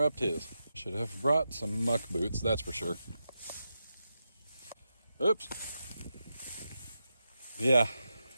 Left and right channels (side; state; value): both; inverted; correlation -0.88